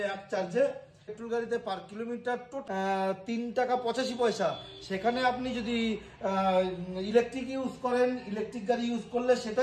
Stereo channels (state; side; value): identical; both; correlation 1.00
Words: এক চার্জে। পেট্রোল গাড়িতে পার কিলোমিটার 3 টাকা 85 পয়সা। সেখানে আপনি যদি ইলেকট্রিক ইউজ করেন, ইলেকট্রিক গাড়ি ইউজ করলে সেটা